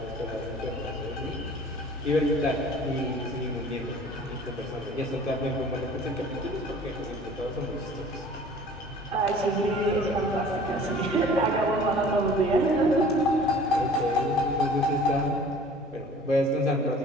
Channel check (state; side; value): normal; both; correlation 0.47